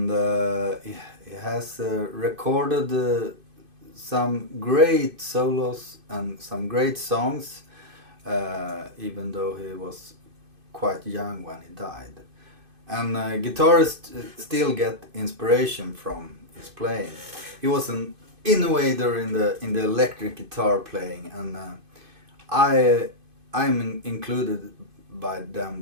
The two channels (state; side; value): late; left; 2.5 ms